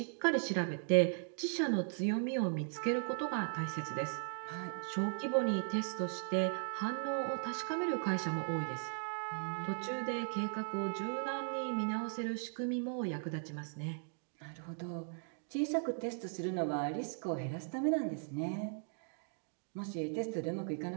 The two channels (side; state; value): left; silent; digital silence